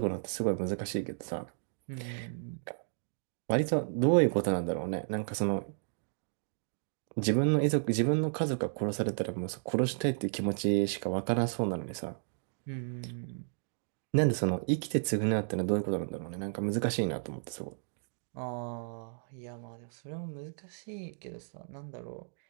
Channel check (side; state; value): left; silent; digital silence